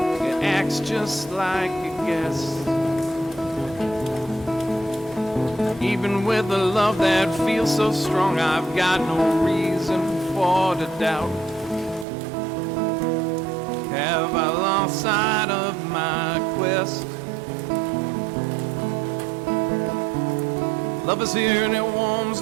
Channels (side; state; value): left; drops out; at 12.1 s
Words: it acts just like a guest. Even with a love that feels so strong, I've got no reason for to doubt. Have I lost sight of my quest? Love is here and it warms